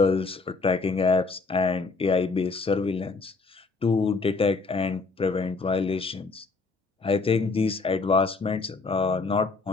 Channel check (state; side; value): quieter; right; 4.0 dB